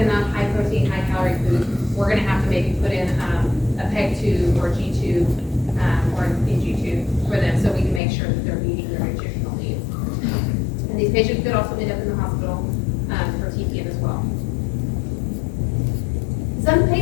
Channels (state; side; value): drops out; right; at 8.0 s